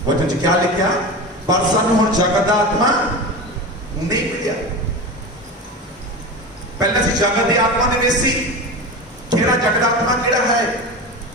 ਵਚਨ 'ਚ ਕੀ ਲਿਖਿਆ? ਪਰ ਸਾਨੂੰ ਹੁਣ ਜਗਤ ਦਾ ਆਤਮਾ ਨਹੀਂ ਮਿਲਿਆ। ਪਹਿਲਾਂ ਅਸੀਂ ਜਗਤ ਦੀ ਆਤਮਾ ਦੇ ਵਿੱਚ ਸੀ। ਕਿਹੜਾ ਜਗਤ ਦਾ ਆਤਮਾ ਕਿਹੜਾ ਹੈ?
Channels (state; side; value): normal; both; correlation 0.27